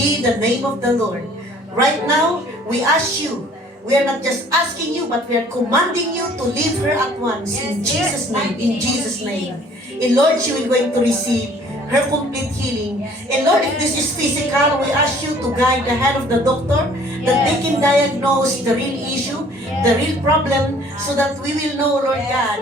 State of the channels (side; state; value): both; normal; correlation 0.55